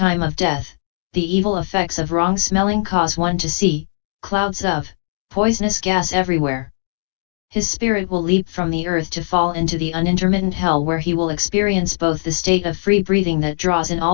of death, the evil effects of wrong smelling cause one to see clouds of poisonous gas everywhere. His spirit will leap from the earth to fall into the unintermittent hell, where he will experience both the state of free breathing that draws in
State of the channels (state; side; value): silent; right; digital silence